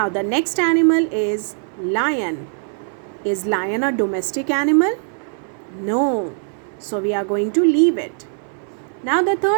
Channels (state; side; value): silent; left; 60 dB below the other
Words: the next animal is lion. Is lion a domestic animal? No. So we are going to leave it. Now the